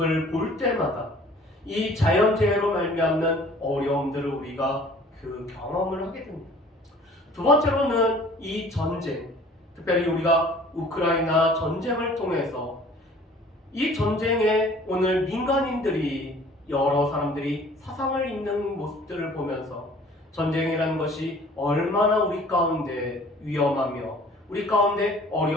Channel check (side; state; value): both; normal; correlation 0.51